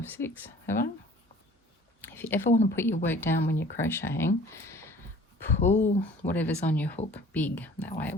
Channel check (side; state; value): both; normal; correlation 0.49